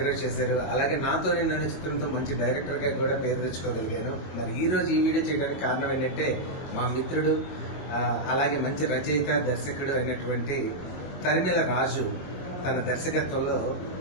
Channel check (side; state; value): right; late; 22 ms